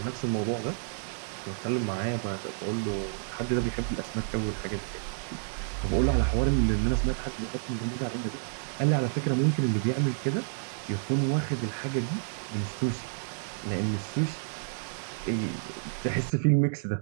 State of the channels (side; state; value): left; silent; digital silence